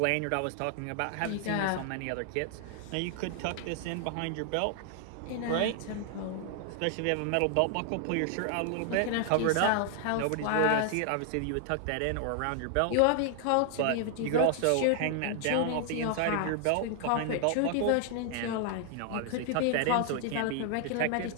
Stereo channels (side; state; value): both; different; correlation 0.00